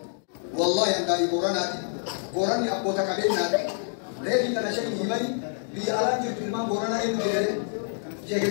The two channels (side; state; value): right; silent; digital silence